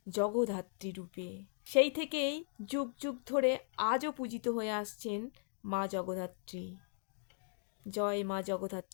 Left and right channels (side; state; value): right; silent; digital silence